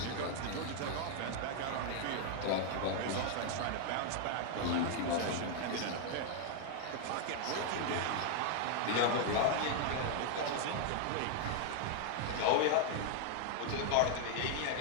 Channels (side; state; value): both; different; correlation 0.00